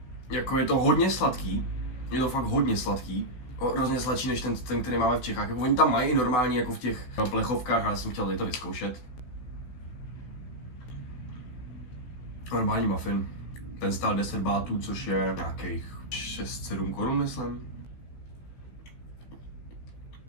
Jako je to hodně sladký. Je to fakt hodně sladký. Hrozně sladší než ten, který máme v Čechách. Jako oni tam mají i normálně jako v těch plechovkách, ale já jsem chtěl tady to vyzkoušet. Normální muffin. Ten stál 10 bátů, což je nějakých 6-7 korun, myslím.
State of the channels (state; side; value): late; right; 16 ms